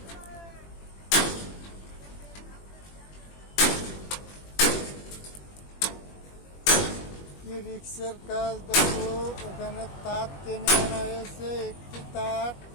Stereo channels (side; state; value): right; late; 21 ms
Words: কি রিক্সের কাজ দেখো, এখানে তার টেনে আনা হয়েছে। একটি তার